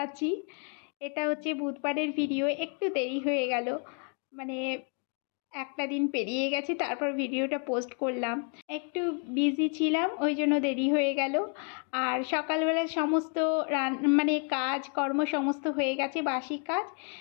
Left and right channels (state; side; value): quieter; right; 38.9 dB